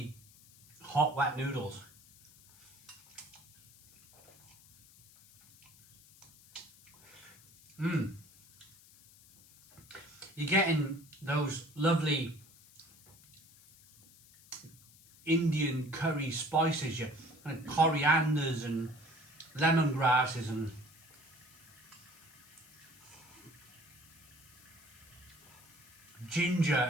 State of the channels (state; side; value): noise; left; hiss, 25 dB below the sound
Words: hot, wet noodles. You're getting those lovely Indian curry spices, your kind of corianders and lemongrasses and ginger